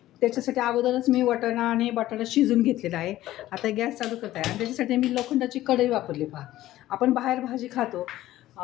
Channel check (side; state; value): right; quieter; 14.9 dB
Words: त्याच्यासाठी अगोदरच मी वाटाणा आणि बटाटा शिजून घेतलेला आहे. आता गॅस चालू करत आहे आणि त्याच्यासाठी मी लोखंडाची कढई वापरली. पहा, आपण बाहेर भाजी खातो